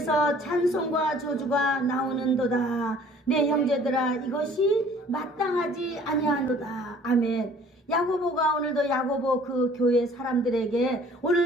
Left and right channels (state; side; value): normal; both; correlation 0.53